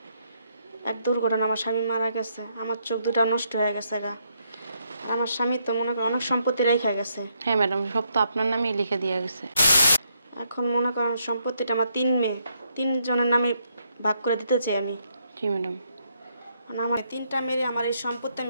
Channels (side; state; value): both; inverted; correlation -0.75